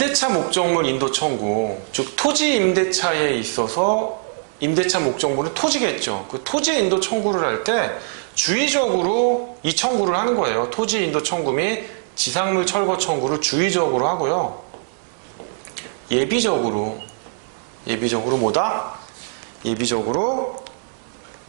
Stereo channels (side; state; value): left; silent; digital silence